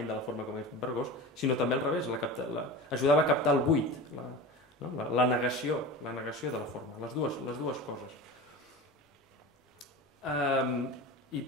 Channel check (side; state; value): both; normal; correlation 0.31